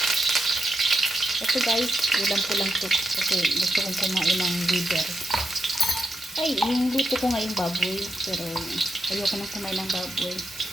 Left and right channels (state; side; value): normal; both; correlation 0.85